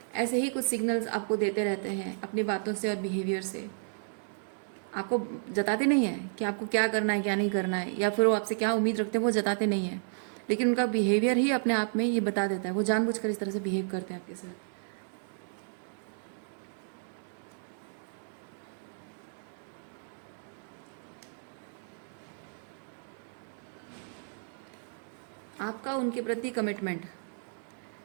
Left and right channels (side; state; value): left; silent; digital silence